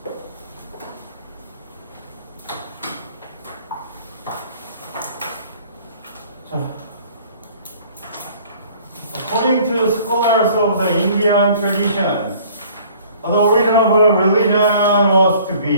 자, according to scholars of the Indian traditions, the origin of a religion was to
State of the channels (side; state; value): both; inverted; correlation -0.53